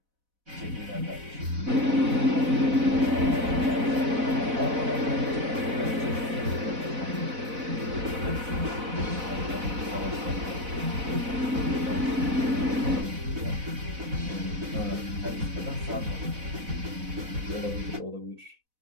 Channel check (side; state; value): left; late; 4.0 ms